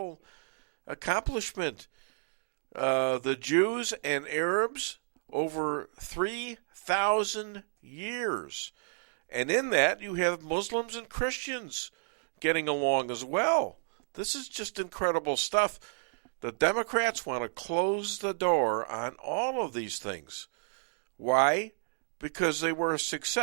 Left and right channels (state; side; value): silent; left; digital silence